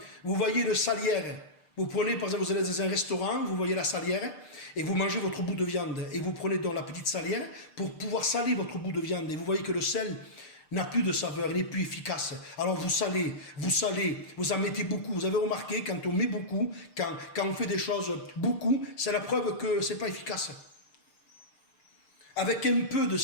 vous voyez le salière. Vous prenez, par exemple, vous allez dans un restaurant, vous voyez la salière, et vous mangez votre bout de viande, et vous prenez donc la petite salière pour pouvoir saler votre bout de viande, et vous voyez que le sel n'a plus de saveur, il n'est plus efficace. Alors vous salez, vous en mettez beaucoup. Vous avez remarqué, quand on met beaucoup, quand on fait des choses beaucoup, c'est la preuve que ce n'est pas efficace. Avec un peu de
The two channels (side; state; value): right; late; 6.6 ms